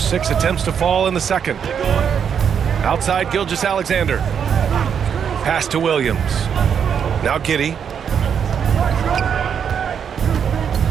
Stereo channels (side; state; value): left; quieter; 7.6 dB